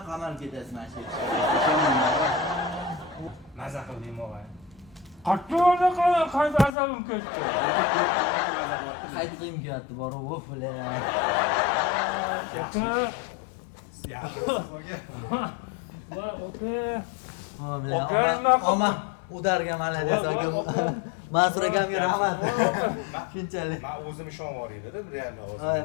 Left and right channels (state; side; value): drops out; right; at 6.7 s